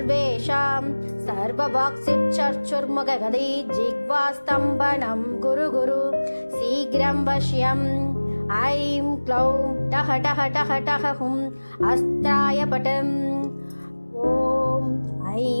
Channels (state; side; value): inverted; both; correlation -1.00